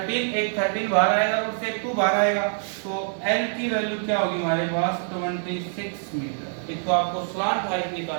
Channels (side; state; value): left; silent; digital silence